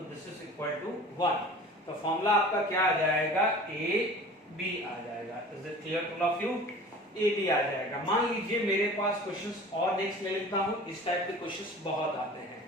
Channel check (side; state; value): both; normal; correlation 0.42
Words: दिस इज इक्वल टू 1। तो फॉर्मूला आपका क्या आ जाएगा? AB आ जाएगा। Is it clear to all of you? AB आ जाएगा। मान लीजिए मेरे पास क्वेश्चंस और नेक्स्ट ले लेता हूं, इस टाइप के क्वेश्चंस बहुत आते हैं।